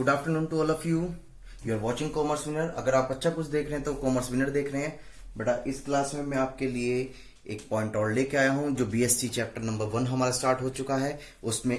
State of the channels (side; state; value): both; identical; correlation 1.00